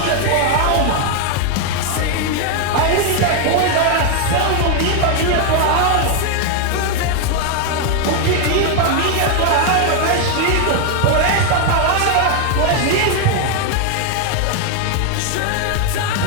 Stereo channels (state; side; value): different; both; correlation 0.00